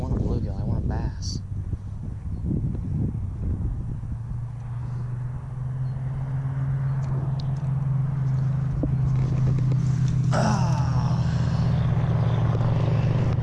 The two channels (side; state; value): both; identical; correlation 1.00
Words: want a bluegill, I want a bass.